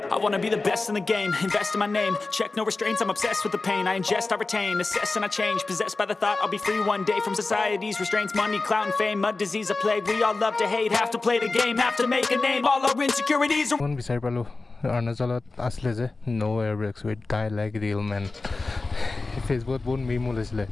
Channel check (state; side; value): quieter; right; 3.6 dB